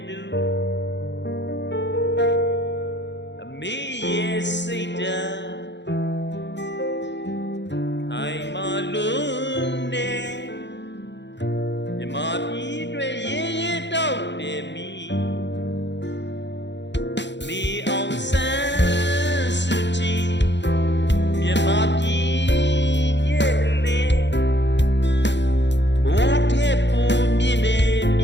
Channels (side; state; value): right; late; 0.52 ms